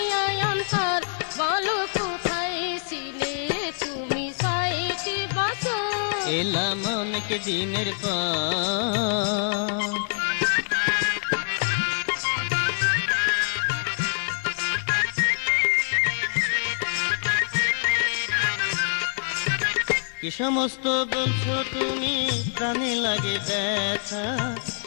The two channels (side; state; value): right; silent; 62 dB below the other